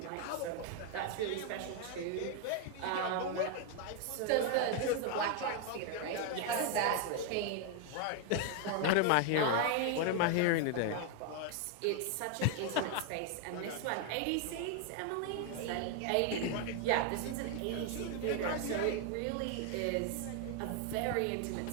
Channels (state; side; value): different; both; correlation 0.00